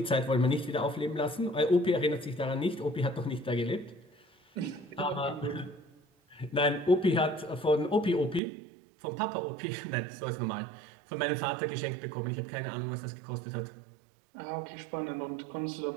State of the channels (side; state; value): left; drops out; at 8.4 s